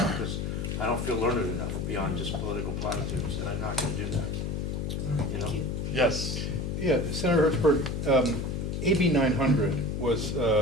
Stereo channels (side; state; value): left; noise; hum, 2 dB below the sound